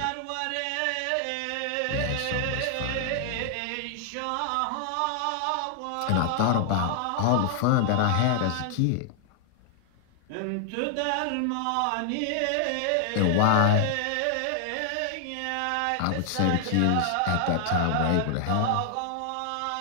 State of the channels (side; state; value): both; different; correlation 0.00